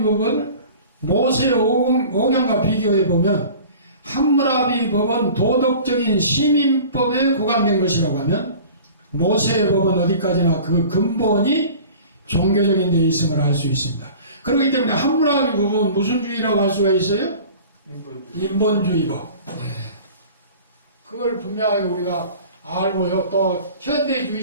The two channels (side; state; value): both; inverted; correlation -0.43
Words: 법은 모세 오경과 비교해 보면 함무라비 법은 도덕적인 시민법에 구간된 것이라고 하면 모세의 법은 어디까지나 그 근본이 종교적인 데 있음을 알 수 있습니다. 그렇기 때문에 함무라비 법은 무슨 주의라고 할 수가 있어요? 인본주의법. 네. 그걸 분명하게 우리가 알고요. 또